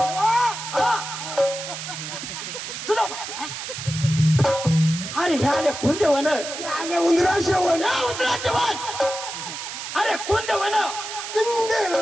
सुदामा अरे ह्या आले कुंदे वन आले उंदरा शेवण या उंदराचे वन अरे कुंदे वन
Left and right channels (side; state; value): right; noise; hiss, 8 dB below the sound